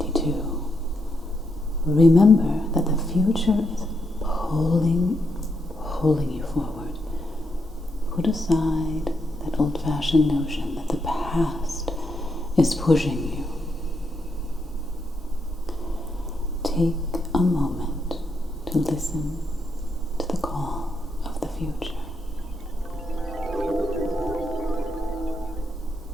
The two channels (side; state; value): both; normal; correlation 0.80